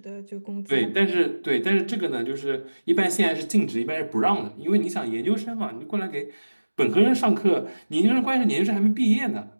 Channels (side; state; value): both; inverted; correlation -1.00